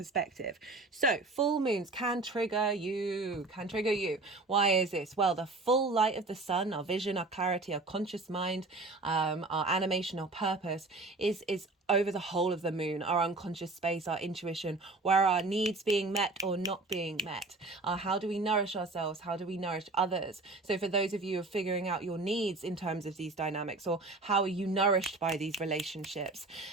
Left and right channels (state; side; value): quieter; left; 3.4 dB